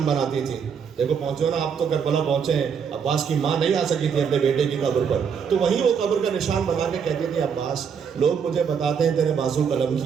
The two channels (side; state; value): left; quieter; 6.9 dB